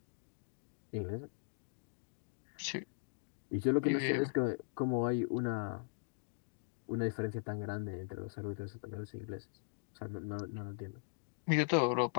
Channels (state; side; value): silent; right; digital silence